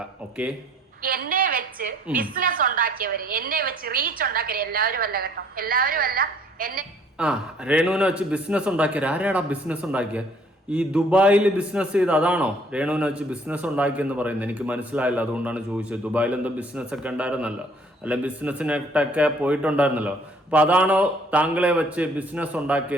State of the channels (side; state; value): both; normal; correlation 0.60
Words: ഓക്കെ, എന്നെ വെച്ച് ബിസിനസ് ഉണ്ടാക്കിയവര്, എന്നെ വെച്ച് റീച്ച് ഉണ്ടാക്കിയവര്, എല്ലാവരും അല്ല കേട്ടോ, എല്ലാവരും അല്ല. രേണുവിനെ വെച്ച് ബിസിനസ് ഉണ്ടാക്കിയത് ആരാടാ? ബിസിനസ് ഉണ്ടാക്കിയ ഈ ദുബായിൽ ബിസിനസ് ചെയ്ത് അതാണോ രേണുവിനെ വെച്ച് ബിസിനസ് ഉണ്ടാക്കിയെന്ന് പറയുന്നത്? എനിക്ക് മനസ്സിലായില്ല, അതുകൊണ്ടാണ് ചോദിച്ചത്. ദുബായിൽ എന്തോ ബിസിനസ് ഒക്കെ ഉണ്ടായിരുന്നല്ലോ, അല്ല ബിസിനസ്സിനൊക്കെ പോയിട്ടുണ്ടായിരുന്നല്ലോ. അപ്പൊ അതാണോ താങ്കളെ വെച്ച് ബിസിനസ്